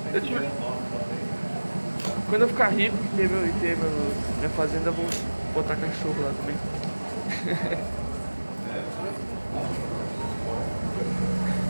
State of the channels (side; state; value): both; inverted; correlation -1.00